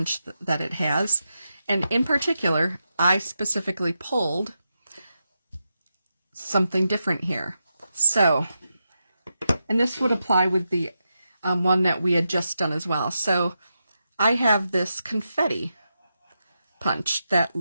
that it has. And in particular, I specifically pulled something different here. So, and this would apply with the one that we had just done as well. So I have this confetti punch that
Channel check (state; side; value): inverted; both; correlation -0.87